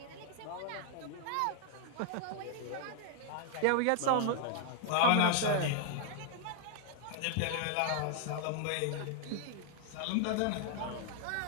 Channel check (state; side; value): different; both; correlation -0.01